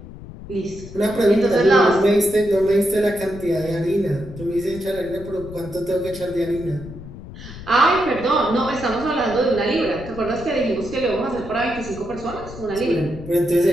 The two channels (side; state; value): left; noise; rumble, 14 dB below the sound